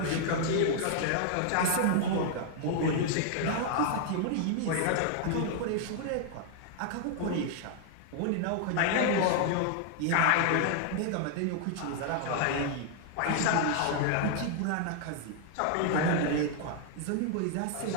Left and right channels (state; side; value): different; both; correlation 0.00